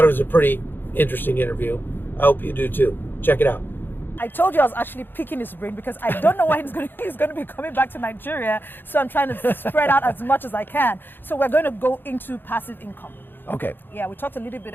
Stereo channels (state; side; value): late; right; 0.097 ms